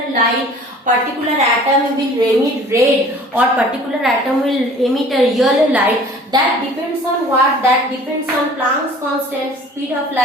light, particular atom will emit red, or particular atom will emit a yellow light. That depends on what? That depends on Planck's constant, speed of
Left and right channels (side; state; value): both; normal; correlation 0.48